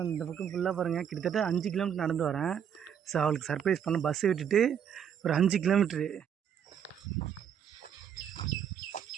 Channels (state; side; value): quieter; left; 8.5 dB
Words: அந்த பக்கம் ஃபுல்லாக பாருங்கள், கிட்டத்தட்ட 5 கிலோமீட்டர் நடந்து வரேன். ஸோ அவளுக்கு சர்ப்ரைஸ் பண்ண பஸ்ஸை விட்டுட்டு ஒரு 5 கிலோமீட்ரு.